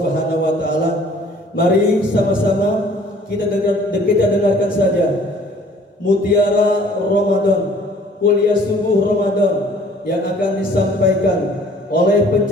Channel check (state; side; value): normal; both; correlation 0.55